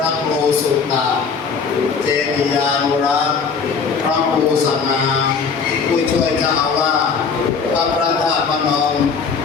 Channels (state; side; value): quieter; right; 5.6 dB